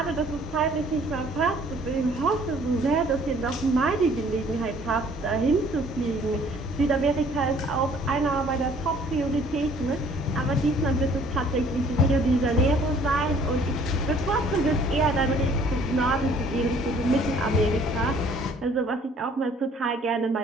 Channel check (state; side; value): normal; both; correlation 0.57